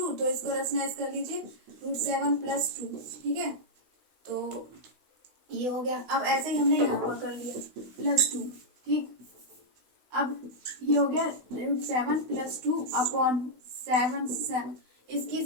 तो इसको रेशनलाइज कर लीजिए √7 प्लस 2। ठीक है, तो ये हो गया। अब ऐसे ही हमने यहाँ पर कर लिया प्लस 2। ठीक, अब ये हो गया √7 प्लस 2/7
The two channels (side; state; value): left; late; 16 ms